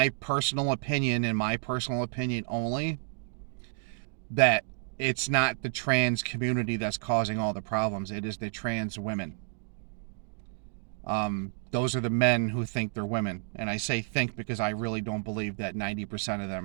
personal opinion, and my personal opinion only, that it's not the trans community that's causing all the problems. It is the trans women. Those are the men who think they're women. And I say think because I really don't believe that 90% of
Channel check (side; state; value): left; silent; 58 dB below the other